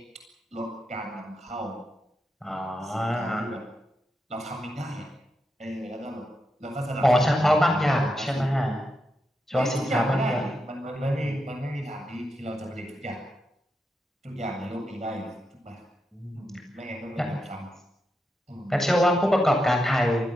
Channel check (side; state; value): both; normal; correlation 0.85